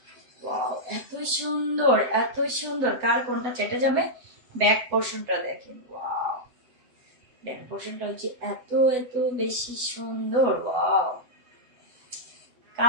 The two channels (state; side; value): late; left; 8.0 ms